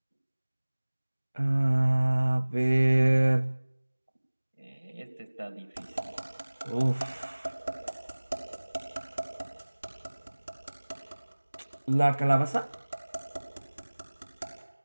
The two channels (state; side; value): inverted; both; correlation -1.00